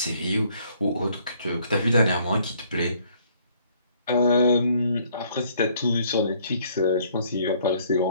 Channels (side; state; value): both; inverted; correlation -0.64